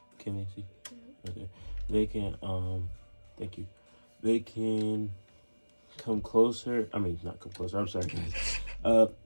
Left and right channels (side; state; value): both; inverted; correlation -1.00